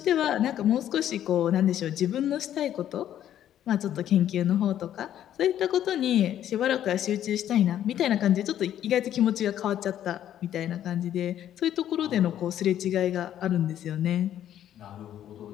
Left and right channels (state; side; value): quieter; right; 11.1 dB